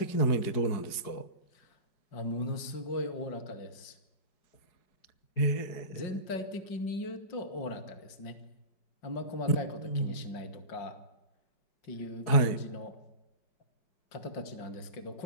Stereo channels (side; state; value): right; late; 4.8 ms